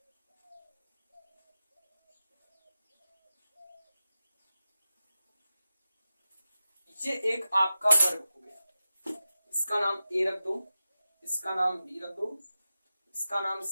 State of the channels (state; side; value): inverted; both; correlation -0.93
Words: ये एक आपका वर्ग हो गया। इसका नाम A रख दो, इसका नाम B रख दो, इसका नाम